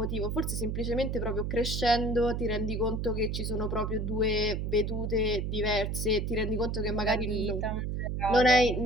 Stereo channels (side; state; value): right; noise; hum, 1 dB below the sound